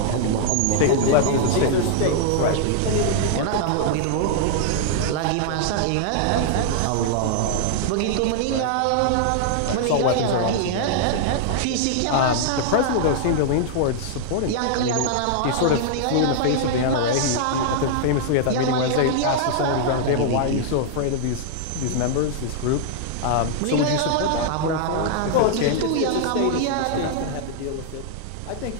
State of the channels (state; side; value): different; both; correlation -0.01